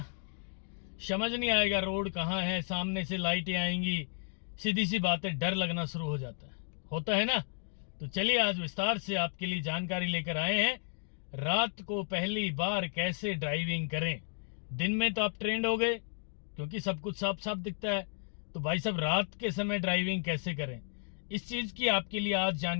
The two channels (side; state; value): right; silent; 56 dB below the other